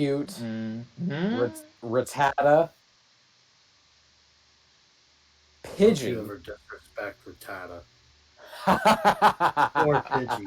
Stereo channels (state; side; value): identical; both; correlation 1.00